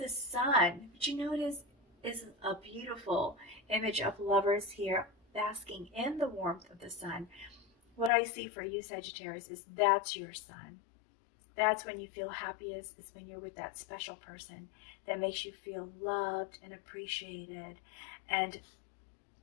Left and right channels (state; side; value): drops out; right; at 8.1 s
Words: sun, what you notice is a beautiful image of lovers here basking in the warmth of the sun. What I see for you, Sagittarius, is that's your sun. That's when you feel happiest. It's when you're with that special person that makes you feel loved and appreciated. And